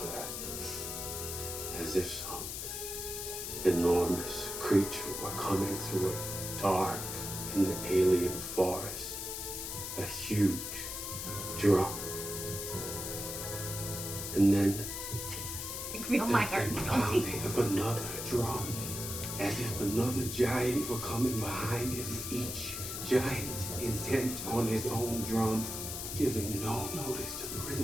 As if some enormous creature were coming through a dark and alien forest. A huge drum. And then Oh my heart. the pounding of another drum. As if another giant were coming behind him, each giant intent on his own drum, giving no notice to the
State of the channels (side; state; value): left; noise; hiss, 5 dB below the sound